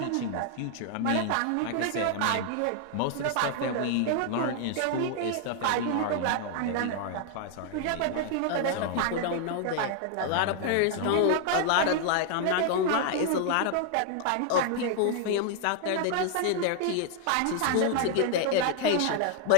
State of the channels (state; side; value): different; both; correlation 0.00